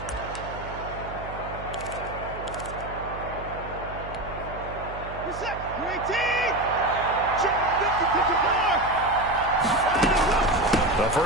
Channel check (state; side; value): noise; right; hum, 12 dB below the sound